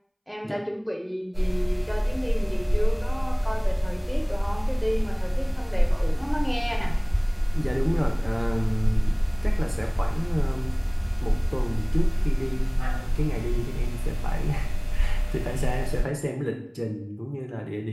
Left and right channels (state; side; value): identical; both; correlation 1.00